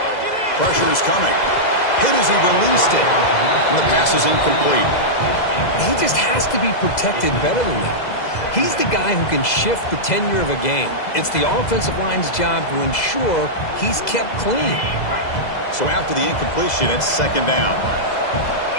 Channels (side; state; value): right; late; 2.0 ms